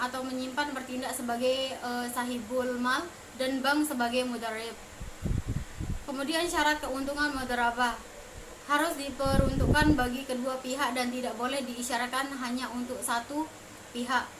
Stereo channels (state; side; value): identical; both; correlation 1.00